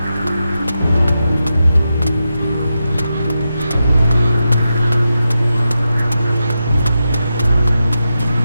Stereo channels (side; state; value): both; inverted; correlation -0.88